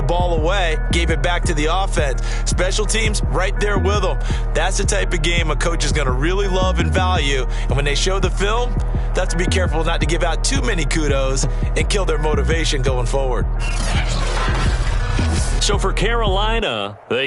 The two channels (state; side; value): identical; both; correlation 1.00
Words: ball away, gave it back to the offense. Special teams, right there with them. That's the type of game a coach is going to really love and value. And when they show the film, they have to be careful not to give out too many kudos and kill their motivation going forward. So for Carolina,